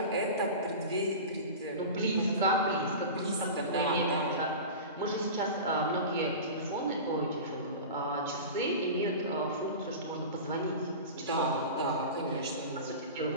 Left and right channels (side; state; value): both; inverted; correlation -0.31